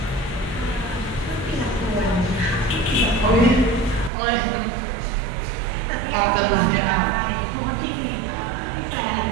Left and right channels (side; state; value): left; drops out; at 4.1 s